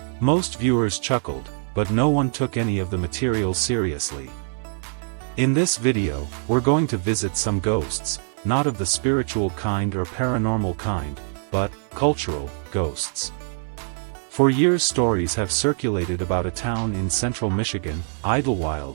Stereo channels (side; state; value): left; silent; 59 dB below the other